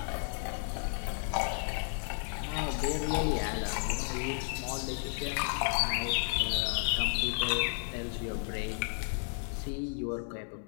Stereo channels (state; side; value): silent; right; 56 dB below the other